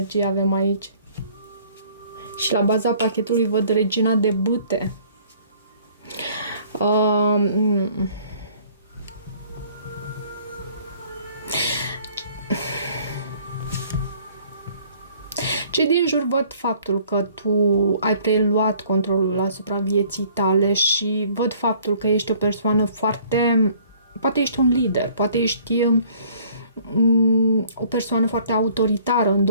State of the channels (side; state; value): both; inverted; correlation -0.57